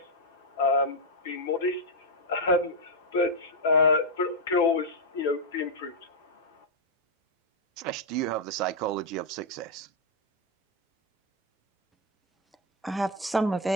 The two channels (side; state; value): both; normal; correlation -0.02